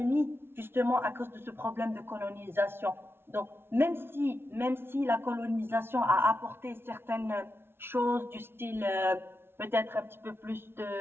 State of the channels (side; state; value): left; late; 0.11 ms